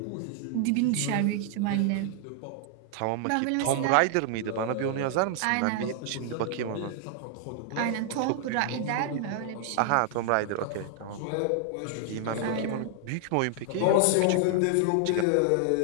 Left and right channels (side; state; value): both; different; correlation 0.00